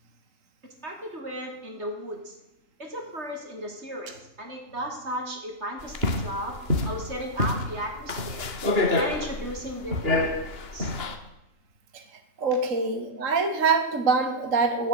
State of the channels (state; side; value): late; left; 2.9 ms